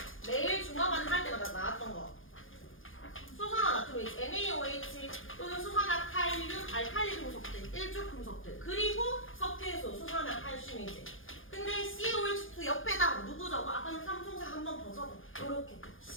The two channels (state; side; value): late; right; 0.59 ms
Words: 매일 중화반응 할 때마다 나왔던 거. 수산화나트륨이지. NaOH 또는 수산화칼륨, 알칼리 금속들, 일족 금속들. 그리고 석회수, 수산화칼슘이지. 근데 CaOH2 옆에다 누구 적어? 아까는 삼총사 한 번 더 적어. 요렇게